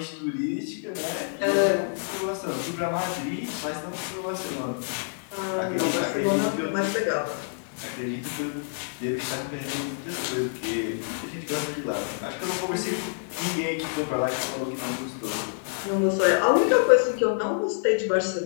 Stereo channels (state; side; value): silent; right; 58 dB below the other